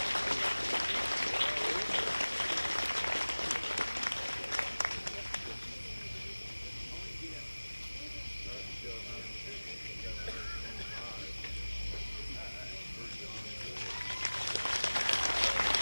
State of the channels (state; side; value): inverted; both; correlation -1.00